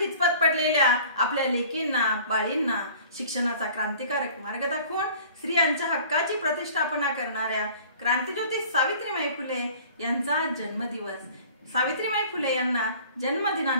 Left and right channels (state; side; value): inverted; both; correlation -0.48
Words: पडलेल्या आपल्या लेकींना बाळींना शिक्षणाचा क्रांतिकारक मार्ग दाखवून स्त्रियांच्या हक्काची प्रतिष्ठापना करणाऱ्या क्रांतिज्योती सावित्रीबाई फुले यांचा जन्मदिवस। सावित्रीबाई फुले यांना